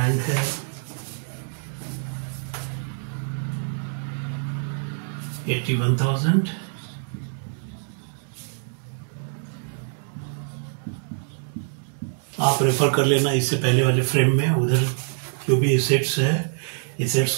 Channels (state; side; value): silent; left; digital silence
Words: है $81,000। आप रेफर कर लेना इससे पहले वाले फ्रेम में, उधर जो भी एसेट्स है एसेट्स